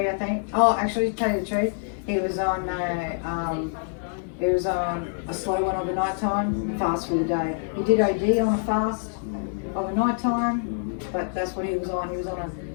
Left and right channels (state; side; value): silent; right; digital silence